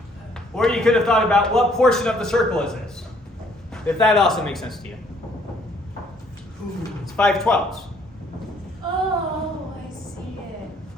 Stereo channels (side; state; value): both; normal; correlation 0.63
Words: Or you could have thought about what portion of the circle is this? If that also makes sense to you. It's 5/12. Oh, I see it.